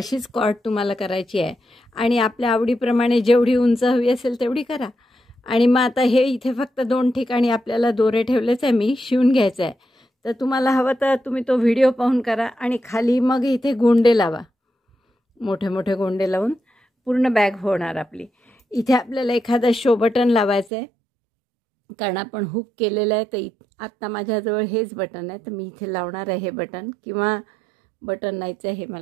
कॉर्ड तुम्हाला करायची आहे आणि आपल्या आवडीप्रमाणे जेवढी उंच हवी असेल तेवढी करा. आणि मग आता हे इथे फक्त 2 ठिकाणी आपल्याला दोरे ठेवलेच आहे, मी शिवून घ्यायचं आहे. तर तुम्हाला हवं तर तुम्ही तो व्हिडिओ पाहून करा. आणि खाली मग इथे गोंडे लावा, मोठे मोठे गोंडे लावून पूर्ण बॅग होणार आपली. इथे आपल्याला एखादं शो बटन लावायचं आहे कारण आपण हुक केलेलं आहे. तर आत्ता माझ्याजवळ हेच बटन आहे, तर मी इथे लावणार आहे हे बटन. किंवा बटन नाहीचं आहे, हे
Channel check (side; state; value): left; drops out; at 20.7 s